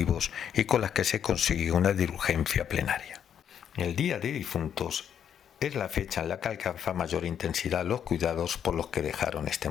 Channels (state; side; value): quieter; right; 8.8 dB